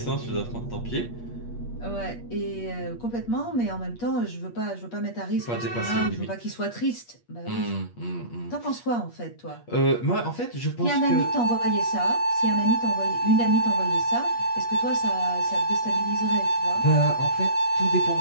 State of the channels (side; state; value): right; late; 8.4 ms